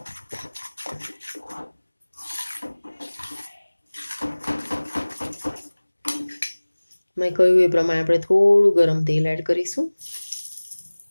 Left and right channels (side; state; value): both; inverted; correlation -1.00